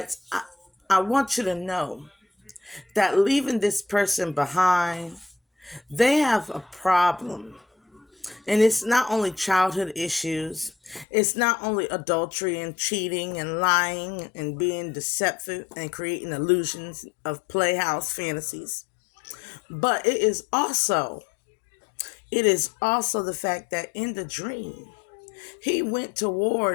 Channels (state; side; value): drops out; right; at 11.1 s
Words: I want you to know that leaving this person behind, they have a problem. And it's not only childhood issues. It's not only adultery and cheating and lying and being deceptive and creating illusions of playhouse fantasies. But it is also the fact that in the dream, he went